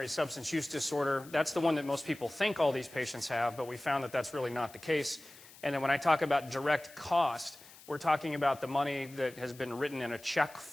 substance use disorder, that's the one that most people think all these patients have, but we found that that's really not the case. And then when I talk about direct cost, we're talking about the money that has been written in a check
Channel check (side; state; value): left; noise; hiss, 21 dB below the sound